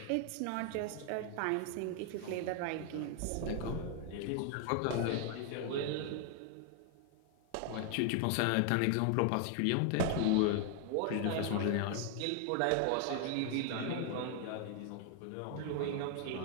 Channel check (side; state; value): both; different; correlation 0.00